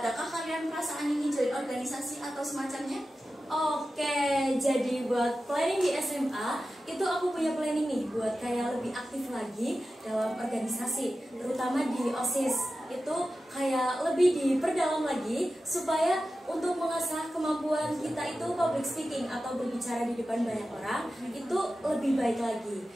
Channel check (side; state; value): both; normal; correlation 0.94